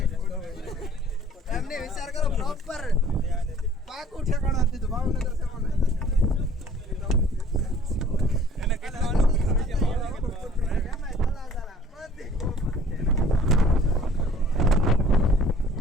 એમને વિચાર કરો પ્રોપર પાકું ઠેકાણું આપી દીધું ભાવનગર છે મને એને કેટલા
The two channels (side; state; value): both; normal; correlation 0.53